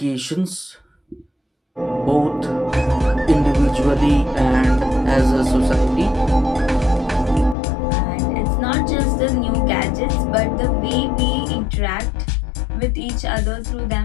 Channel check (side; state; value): right; drops out; at 7.6 s